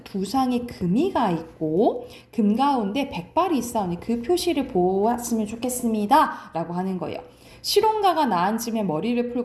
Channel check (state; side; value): identical; both; correlation 1.00